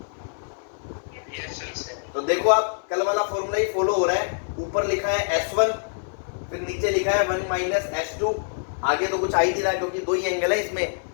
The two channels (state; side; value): silent; right; 62 dB below the other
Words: तो देखो आप कल वाला फॉर्मूला ही फॉलो हो रहा है। ऊपर लिखा है S1, फिर नीचे लिखा है 1 माइनस S2। आगे तो कुछ आ ही नहीं रहा क्योंकि दो ही एंगल है इसमें,